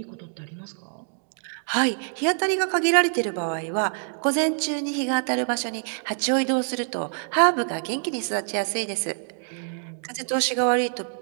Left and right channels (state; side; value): silent; left; digital silence